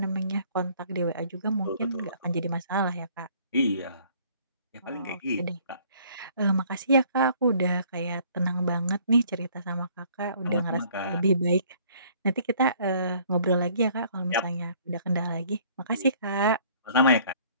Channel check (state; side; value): inverted; both; correlation -0.58